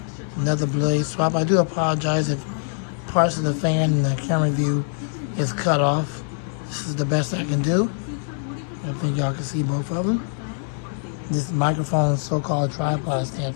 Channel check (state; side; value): silent; right; 56 dB below the other